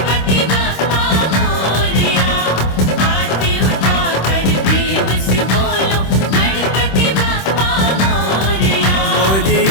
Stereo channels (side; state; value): right; late; 26 ms